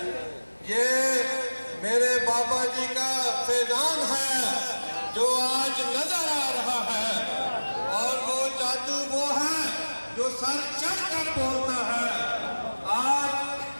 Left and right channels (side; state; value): both; inverted; correlation -1.00